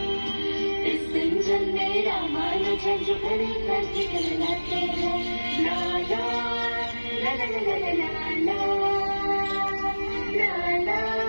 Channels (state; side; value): inverted; both; correlation -1.00